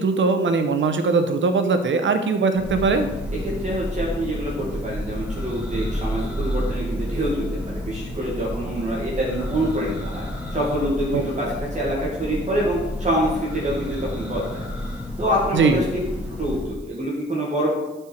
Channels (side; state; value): right; noise; hiss, 29 dB below the sound